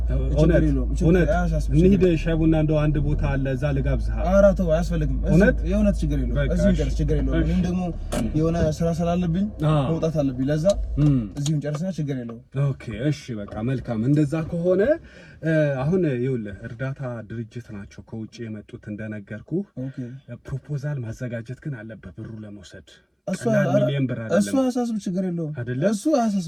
ችግር የለውም እንሂድ ሻይ ቡና እንደው አንድ ቦታ አለ እዛ ልጋብዝህ ኧረ ተው አያስፈልግም የእውነት ችግር የለውም እዚህም ጨርስ ችግር የለውም እኔም ደግሞ የሆነ ስራ ስላለብኝ መውጣት አለብኝ ለዛ እዚህም ጨርስና ችግር የለውም ኦኬ እሺ በቃ መልካም እንደዛ ከሆነ አሁን ይኸውልህ እርዳታ ድርጅት ናቸው ከውጭ የመጡት እንደነገርኩ ፕሮፖዛል ማዘጋጀት ግን አለበት ብሩ ለመውሰድ እሱ አሳስብ ችግር የለውም እሱ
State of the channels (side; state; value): both; identical; correlation 1.00